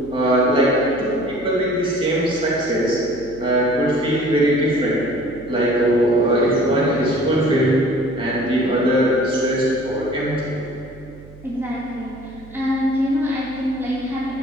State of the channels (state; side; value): noise; right; hum, 20 dB below the sound